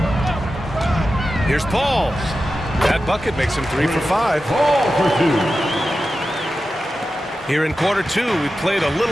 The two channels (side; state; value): both; normal; correlation 0.92